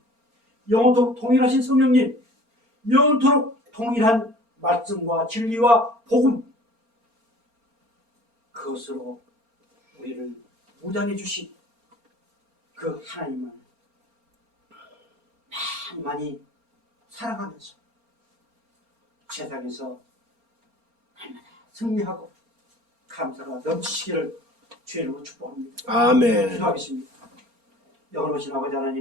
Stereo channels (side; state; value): left; late; 4.3 ms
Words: 영원토록 동일하신 성령님, 영원토록 통일한 말씀과 진리와 복음, 그것으로 우리를 무장해 주신 그 하나님을 많이 사랑하면서 세상에서 날마다 승리하고 감사가 넘치시기를 주의 이름으로 축복합니다. 아멘. 기도하겠습니다. 영원하신 아버지